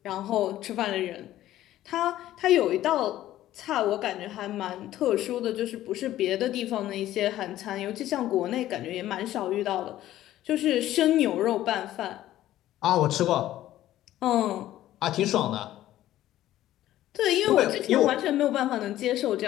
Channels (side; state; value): right; quieter; 13.8 dB